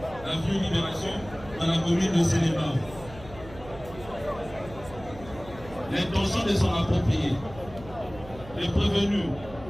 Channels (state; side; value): noise; right; hum, 17 dB below the sound